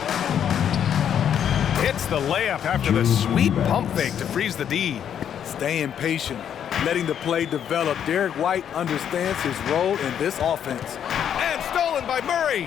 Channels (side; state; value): right; quieter; 9.0 dB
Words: Hits the layup after the sweet pump fake to freeze the D. Staying patient, letting the play develop. Derek White understands his role in this offense. And stolen by